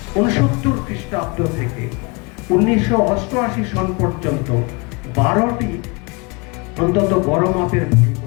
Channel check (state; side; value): quieter; right; 28.9 dB